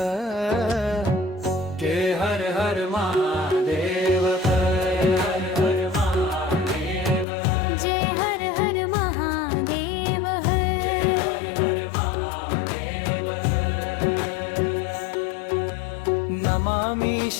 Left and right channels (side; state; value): right; drops out; at 7.2 s